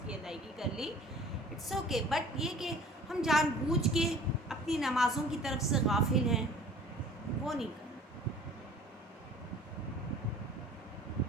کی ادائیگی کر لی، اٹس اوکے. بٹ یہ کہ ہم جان بوجھ کے اپنی نمازوں کی طرف سے غافل ہیں، وہ نہیں کرنا.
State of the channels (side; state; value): both; normal; correlation 0.48